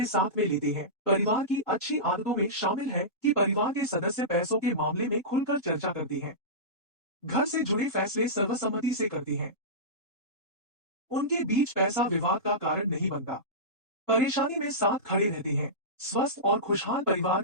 साथ में लेते हैं। परिवार की अच्छी आदतों में शामिल है कि परिवार के सदस्य पैसों के मामले में खुलकर चर्चा करते हैं। घर से जुड़े फैसले सर्वसम्मति से करते हैं। उनके बीच पैसा विवाद का कारण नहीं बनता। परेशानी में साथ खड़े रहते हैं। स्वस्थ और खुशहाल परिवार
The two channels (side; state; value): both; normal; correlation -0.18